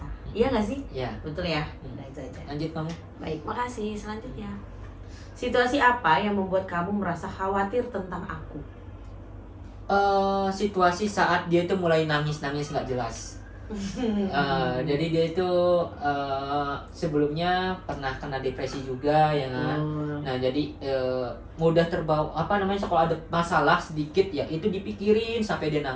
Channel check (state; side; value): identical; both; correlation 1.00